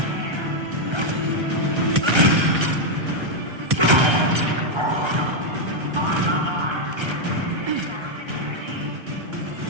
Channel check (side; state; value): left; late; 1.3 ms